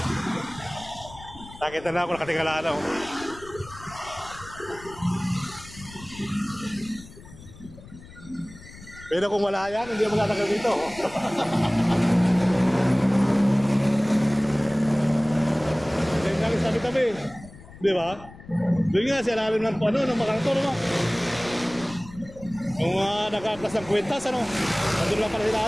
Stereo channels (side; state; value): left; noise; rumble, 18 dB below the sound